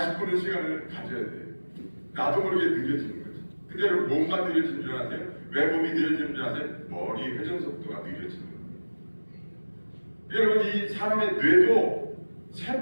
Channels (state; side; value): inverted; both; correlation -1.00